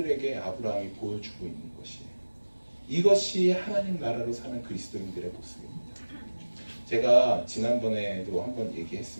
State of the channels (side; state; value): both; inverted; correlation -1.00